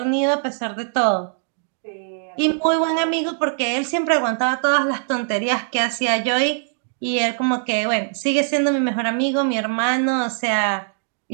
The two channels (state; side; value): silent; left; 65 dB below the other